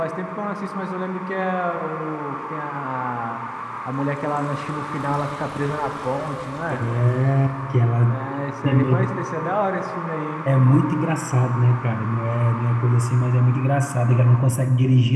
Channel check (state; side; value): identical; both; correlation 1.00